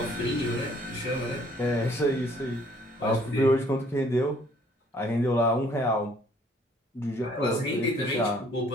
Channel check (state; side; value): normal; both; correlation 0.60